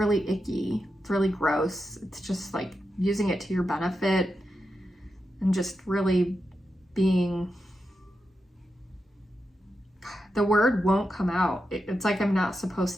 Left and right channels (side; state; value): both; normal; correlation 0.88